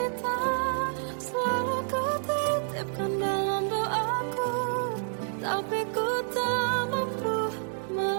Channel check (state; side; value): silent; left; 59 dB below the other